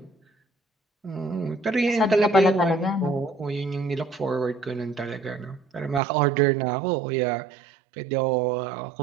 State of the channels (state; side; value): drops out; left; at 6.0 s